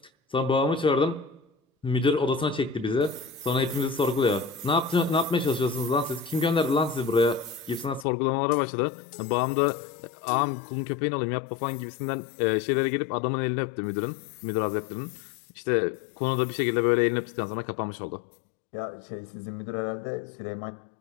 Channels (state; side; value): drops out; right; at 8.1 s